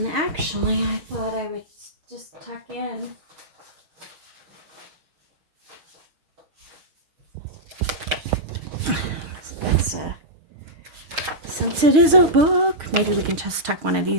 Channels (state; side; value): late; left; 6.5 ms